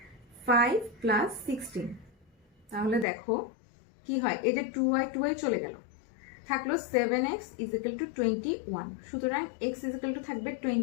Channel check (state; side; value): drops out; right; at 3.1 s